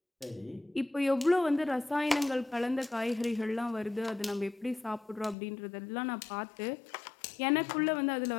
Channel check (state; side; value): drops out; right; at 5.4 s